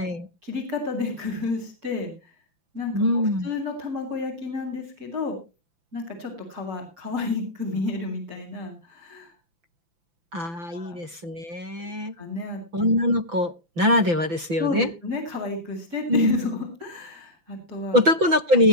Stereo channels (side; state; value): left; late; 5.9 ms